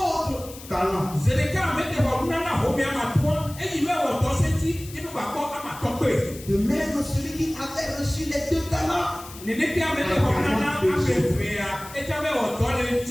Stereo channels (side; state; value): left; noise; hiss, 16 dB below the sound